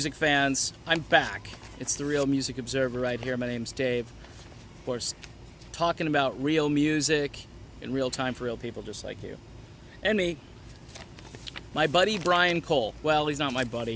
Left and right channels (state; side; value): identical; both; correlation 1.00